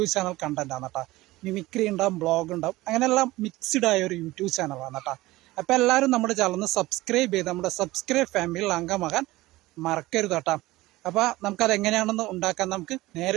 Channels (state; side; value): quieter; left; 18.7 dB